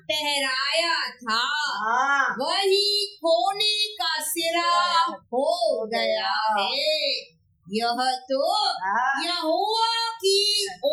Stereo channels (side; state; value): both; identical; correlation 1.00